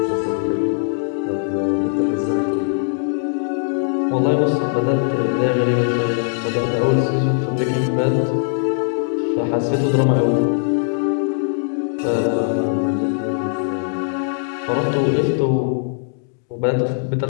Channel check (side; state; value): right; silent; digital silence